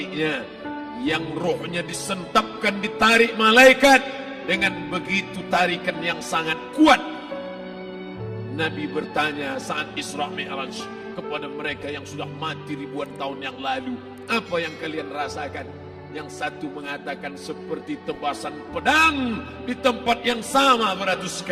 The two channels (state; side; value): identical; both; correlation 1.00